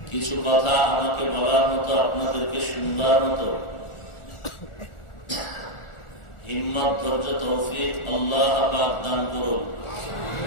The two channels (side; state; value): right; late; 1.4 ms